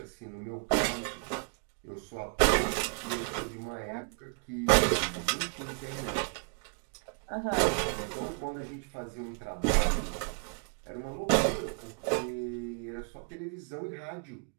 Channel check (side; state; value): left; quieter; 39.3 dB